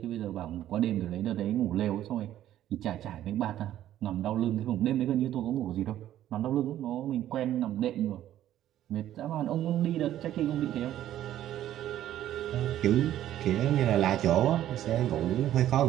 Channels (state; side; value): quieter; left; 12.4 dB